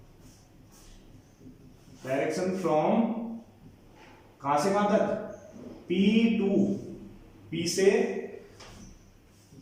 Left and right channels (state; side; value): identical; both; correlation 1.00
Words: फ्रॉम कहां से कहां तक, P टू P से